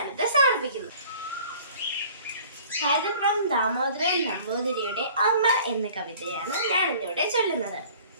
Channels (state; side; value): inverted; both; correlation -0.49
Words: സമർപ്പിക്കുന്നു. കൈതപ്രം ദാമോദരൻ നമ്പൂതിരിയുടെ അമ്മ എന്ന കവിതയാണ് ഞാൻ ഇന്നിവിടെ ചൊല്ലുന്നത്.